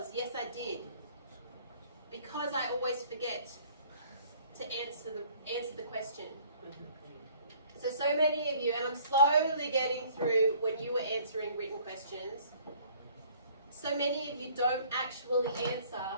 Yes, I did. Because I always forget to answer the question. So many of you, and I'm slowly getting through when you were answering written questions, so many of you don't actually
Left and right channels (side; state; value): both; inverted; correlation -0.56